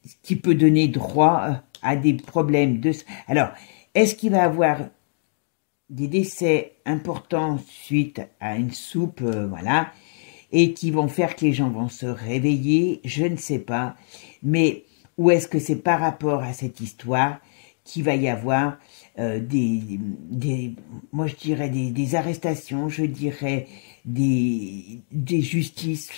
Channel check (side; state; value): right; silent; digital silence